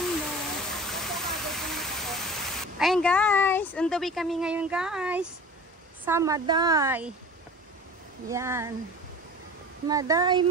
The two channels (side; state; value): both; normal; correlation 0.40